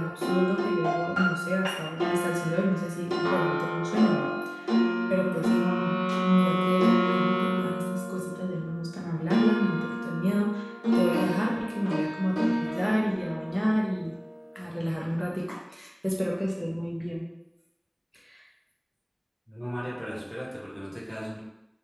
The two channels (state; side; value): identical; both; correlation 1.00